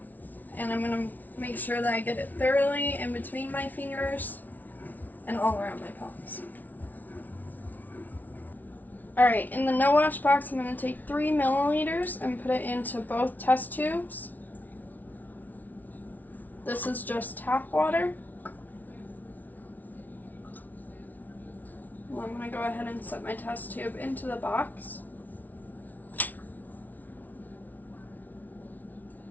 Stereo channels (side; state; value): right; late; 0.080 ms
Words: And I'm going to make sure that I get it thoroughly in between my fingers and all around my palms. Alright, in the no wash box, I'm going to take 3 milliliters and put it into both test tubes. This is just tap water. Well, I'm going to go ahead and set my test tube into the box.